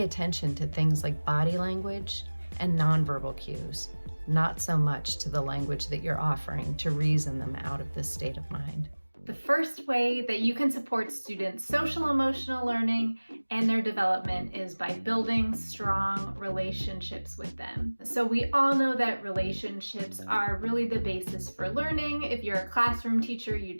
attention to things like body language and nonverbal cues, not so much to the language that you're offering to reason them out of this state of mind. The first way that you can support students' social emotional learning and their development is by building strong relationships with them. So we all know that relationships are really the basis for learning. If you're a classroom teacher, you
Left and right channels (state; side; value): inverted; both; correlation -1.00